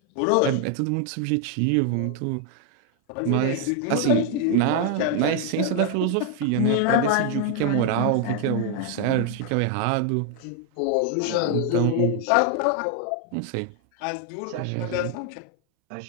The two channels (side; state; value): both; different; correlation 0.00